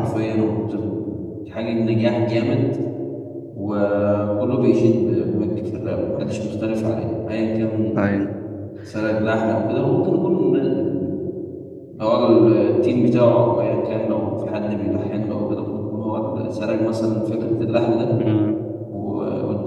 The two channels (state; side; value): identical; both; correlation 1.00